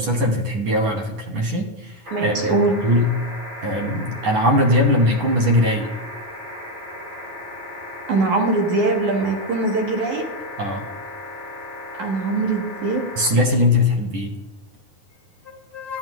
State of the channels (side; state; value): left; late; 9.4 ms